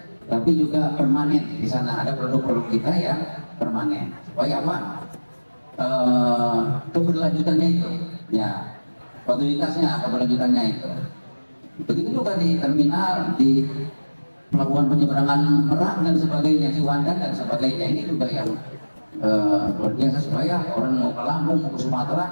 tapi juga permanen. Di sana ada produk-produk kita yang permanen. Supaya apa? Keberlanjutannya itu, ya, kualitasnya, keberlanjutannya itu. Begitu juga di terminal, di pelabuhan penyeberangan Merak dan sebagainya, Ciwandan dan sebagainya. Ini juga yang luar biasa supaya orang mau ke Lampung, mau ke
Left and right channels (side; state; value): both; inverted; correlation -1.00